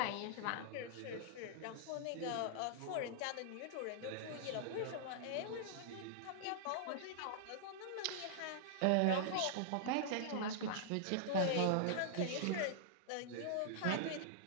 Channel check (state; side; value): different; both; correlation -0.01